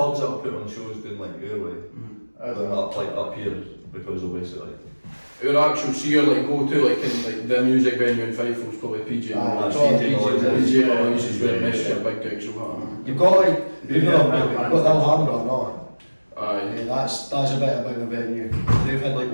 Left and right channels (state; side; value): inverted; both; correlation -1.00